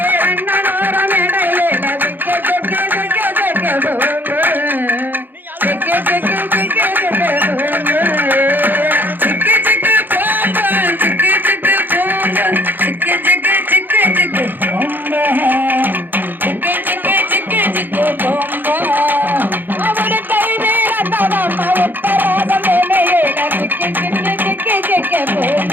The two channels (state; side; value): late; left; 0.091 ms